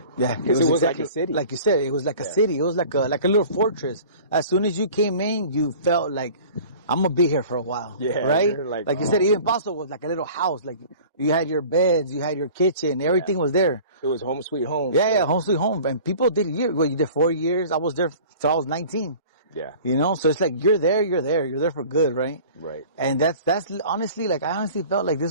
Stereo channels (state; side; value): inverted; both; correlation -0.44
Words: Yeah. Because it was exactly like a city. Like you said, it was like a city. It was like a little fortress. As soon as you came in, you felt like, I'm gonna be here for a while. Yeah. Right? Like you said, even Paso was like a little house. Like you had your beds, you had your kitchen, everything was there. It was home sweet home. Yeah, home sweet home. And people did you did 4 years. I was there till I was 19. Yeah. You know, so it's like, you're there for good, right? Right. And that's honestly, like, I honestly felt like